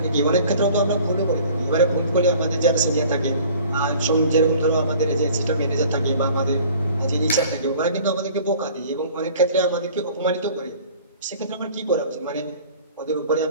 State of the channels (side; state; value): both; inverted; correlation -0.49